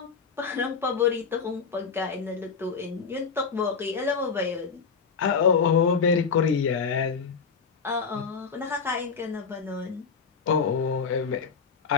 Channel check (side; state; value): right; quieter; 5.6 dB